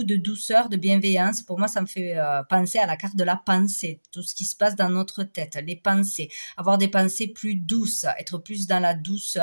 de douceur, de bienveillance. Pour moi, ça me fait penser à la carte de la pensée, tout ce qui se passe dans notre tête, les pensées, avoir des pensées plus douces, être plus dans la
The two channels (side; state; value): both; inverted; correlation -1.00